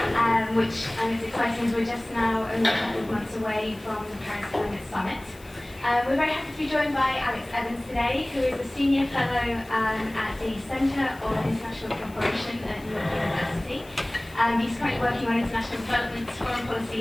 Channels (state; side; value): noise; left; hiss, 24 dB below the sound